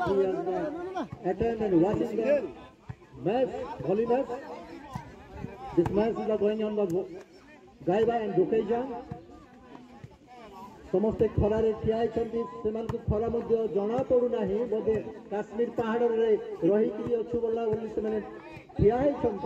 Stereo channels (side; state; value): both; identical; correlation 1.00